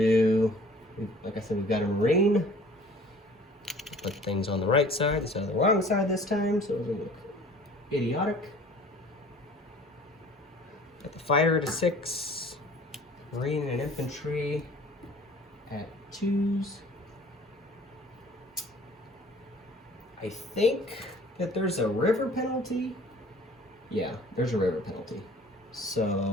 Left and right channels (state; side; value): normal; both; correlation 0.49